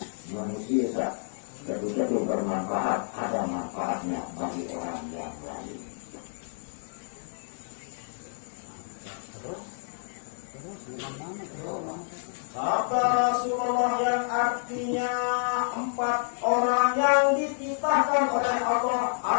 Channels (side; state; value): right; silent; 59 dB below the other